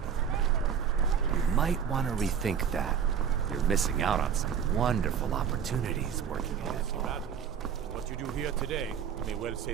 You might want to rethink that. You're missing out on some wonderful opportunities working ahead. What you do here today may well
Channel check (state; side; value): quieter; left; 7.8 dB